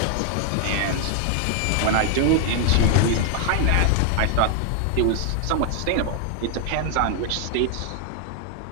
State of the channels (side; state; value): both; different; correlation 0.00